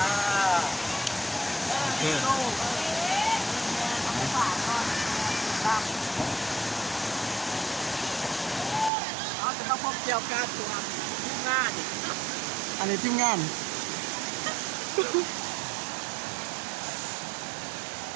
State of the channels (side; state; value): left; drops out; at 8.9 s